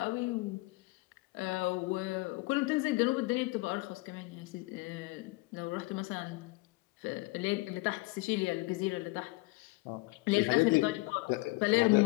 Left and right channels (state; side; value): quieter; right; 23.1 dB